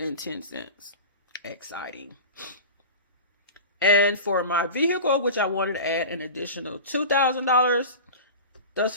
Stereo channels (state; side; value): inverted; both; correlation -0.31